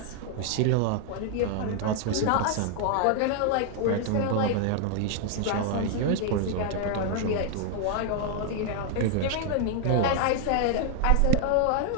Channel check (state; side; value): different; both; correlation 0.00